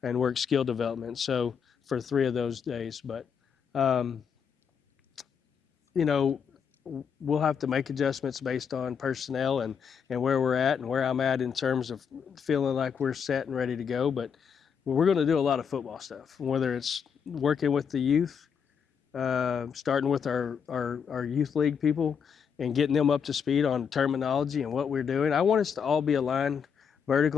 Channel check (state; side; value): quieter; right; 7.0 dB